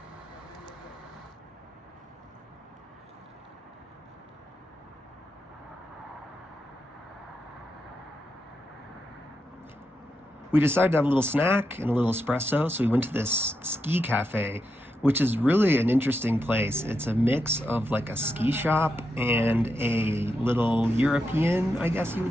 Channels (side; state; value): both; normal; correlation 0.85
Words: We decided to have a little snack and a little espresso, so we went to this ski cafe, which is really an interesting place. It's a mix of like a ski shop and a little European, I guess you